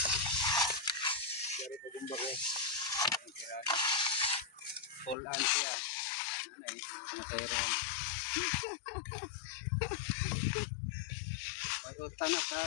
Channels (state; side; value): drops out; right; at 5.2 s